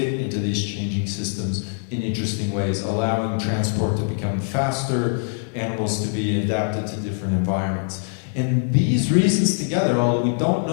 into these changing systems in interesting ways, allowing transport to become faster, animals to be adapted to different environments. And these reasons together, although we don't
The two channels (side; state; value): right; silent; 60 dB below the other